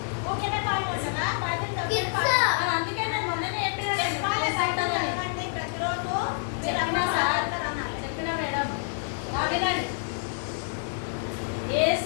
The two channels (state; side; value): silent; right; digital silence